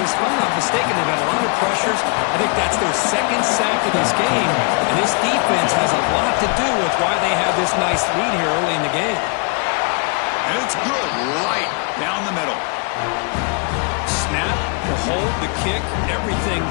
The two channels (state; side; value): quieter; right; 34.9 dB